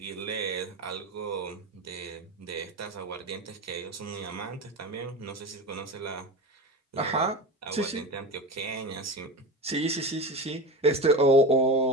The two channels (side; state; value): both; normal; correlation 0.24